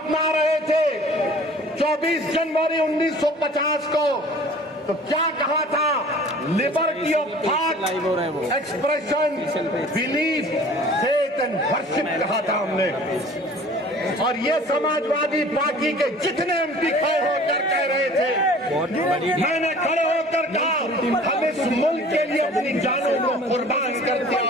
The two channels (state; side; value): normal; both; correlation 0.47